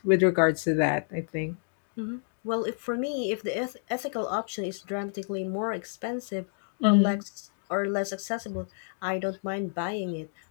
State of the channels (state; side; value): silent; right; digital silence